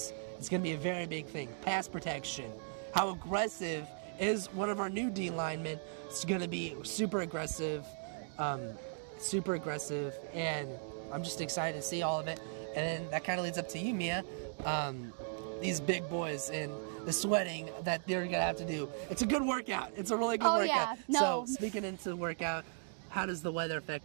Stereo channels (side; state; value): left; silent; digital silence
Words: is going to be a very big thing. Pass protection. How aggressive is one of our new D linemen? It's going to be super aggressive, and I'm just excited to see all of it. And then that kind of leads up to you, Mia. these big boys and the sweating that they're gonna have to do. It's a good workout. It's a really good Oh, workout. yeah. No. So speaking into the workout, how does the weather affect